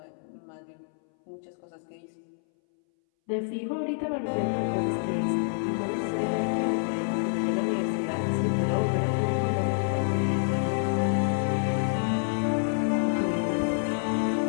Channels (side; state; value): right; silent; 60 dB below the other